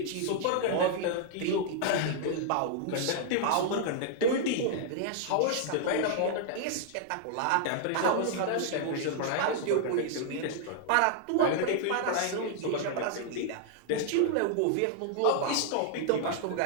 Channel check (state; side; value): different; both; correlation -0.01